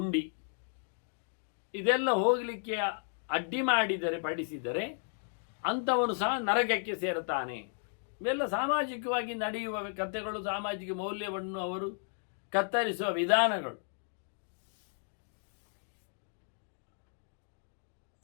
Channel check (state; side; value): silent; right; digital silence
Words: ಇದೆಲ್ಲ ಹೋಗಲಿಕ್ಕೆ ಅಡ್ಡಿ ಮಾಡಿದರೆ ಪಡಿಸಿದರೆ ಅಂಥವನು ಸಹ ನರಕಕ್ಕೆ ಸೇರುತ್ತಾನೆ. ಇವೆಲ್ಲ ಸಾಮಾಜಿಕವಾಗಿ ನಡೆಯುವ ಕಥೆಗಳು, ಸಾಮಾಜಿಕ ಮೌಲ್ಯವನ್ನು ಅವರು ಕತ್ತರಿಸುವ ವಿಧಾನಗಳು.